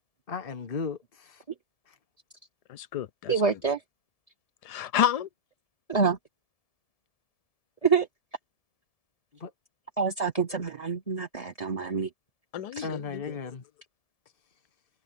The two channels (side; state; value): right; late; 1.7 ms